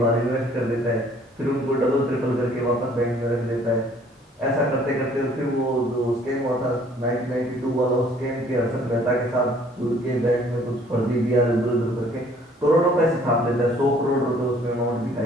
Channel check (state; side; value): normal; both; correlation 0.58